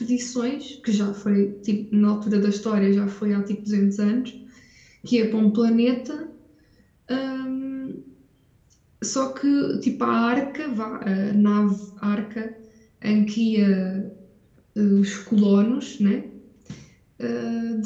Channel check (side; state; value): both; identical; correlation 1.00